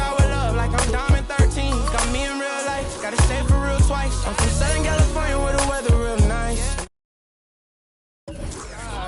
with love, like I'm Diamond 13. Got me in real life, gotta stay for real twice. I'm from Southern California where the weather real nice. I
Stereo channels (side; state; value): both; identical; correlation 1.00